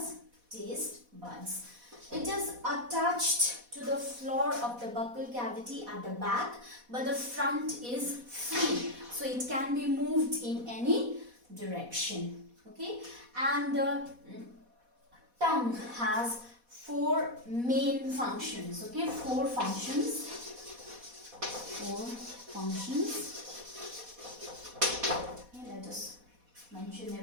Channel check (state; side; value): late; left; 4.1 ms